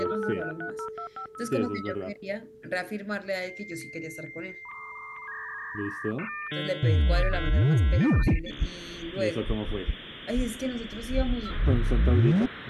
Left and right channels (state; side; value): identical; both; correlation 1.00